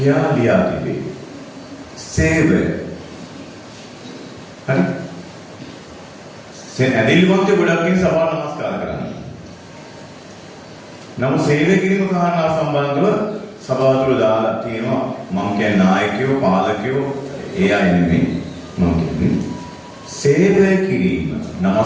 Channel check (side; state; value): both; identical; correlation 1.00